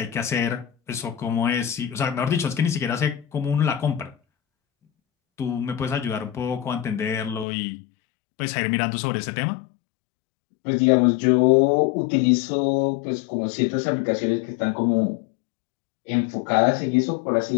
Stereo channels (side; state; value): right; drops out; at 7.5 s